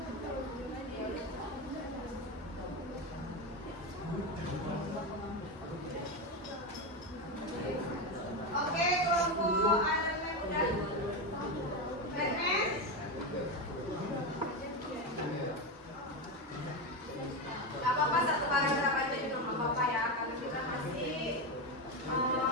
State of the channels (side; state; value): both; normal; correlation 0.14